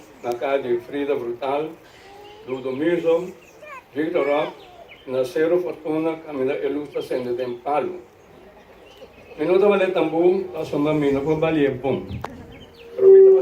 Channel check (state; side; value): identical; both; correlation 1.00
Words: na casa de Frida Brutal, Ludo Mirzo, Victor Rock, Nasero Fortuna, Camila Elusta Sende de Palo. Minuto vale tambu, a sua mina por balia bom.